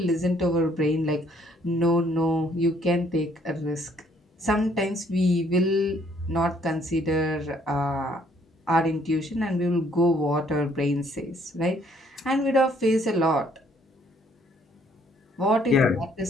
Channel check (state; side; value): normal; both; correlation 0.64